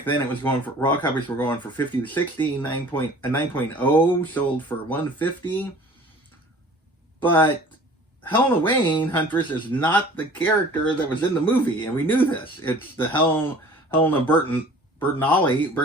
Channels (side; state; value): both; normal; correlation 0.47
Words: then it was going for, raw copies were going for 50 to 60, 9.0 sold for 150. But Helena Wayne, Huntress, is not the character that was in the movie, and we knew this. It's the Helena